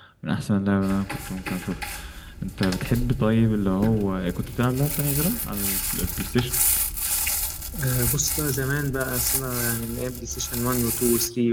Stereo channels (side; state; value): both; identical; correlation 1.00